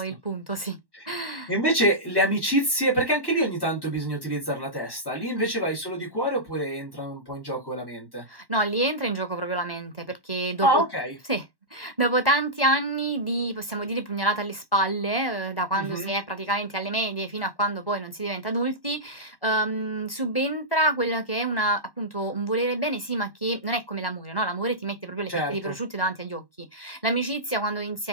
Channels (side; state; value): right; late; 1.1 ms